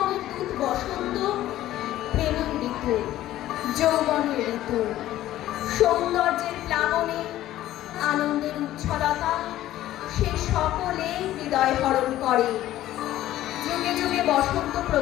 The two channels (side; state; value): right; quieter; 14.0 dB